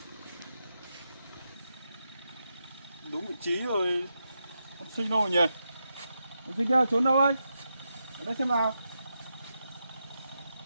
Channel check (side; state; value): both; inverted; correlation -0.86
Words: Đúng vị trí rồi, con sinh đâu rồi nhỉ? Con sinh kia trốn đâu ấy? Ở đây xem nào.